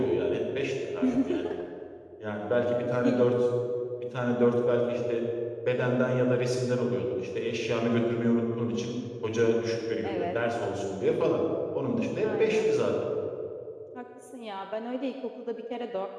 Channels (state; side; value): identical; both; correlation 1.00